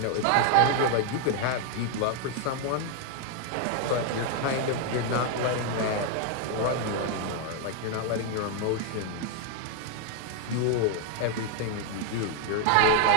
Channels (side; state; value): both; different; correlation 0.00